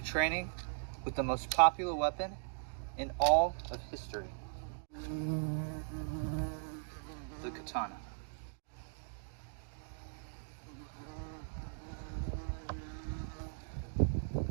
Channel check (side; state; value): left; silent; digital silence